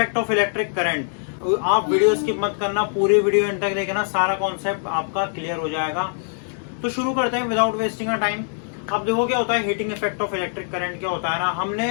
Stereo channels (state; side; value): silent; right; digital silence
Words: of electric current. आप वीडियो स्किप मत करना, पूरी वीडियो एंड तक देखना, सारा कॉन्सेप्ट आपका क्लियर हो जाएगा। तो शुरू करते हैं विदाउट वेस्टिंग अ टाइम। अब देखो क्या होता है heating effect of electric current. क्या होता है ना,